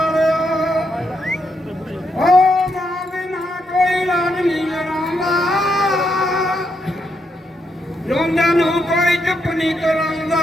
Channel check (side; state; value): both; normal; correlation 0.79